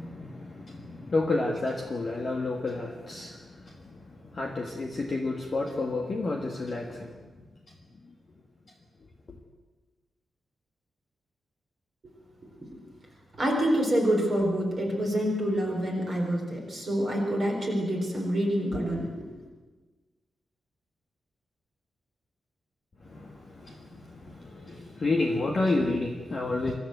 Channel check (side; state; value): both; normal; correlation 0.87